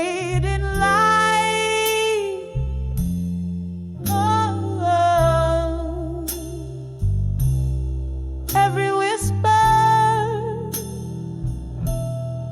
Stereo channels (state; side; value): identical; both; correlation 1.00